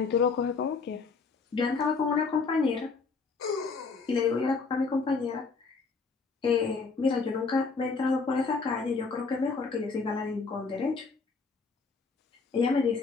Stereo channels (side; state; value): right; quieter; 4.6 dB